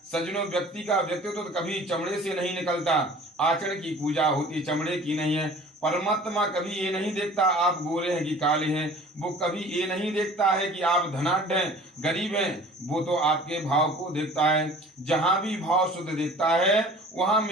सज्जनों, व्यक्ति का व्यक्तित्व तो कभी चमड़े से नहीं निकलता। आचरण की पूजा होती चमड़े की नहीं है। परमात्मा कभी ये नहीं देखता आप गोरे हैं कि काले हैं, वो कभी ये नहीं देखता है कि आप धनाढ्य हैं गरीब हैं, वो तो आपके भाव को देखता है। जहां भी भाव शुद्ध देखता है वहां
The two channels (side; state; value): both; normal; correlation 0.47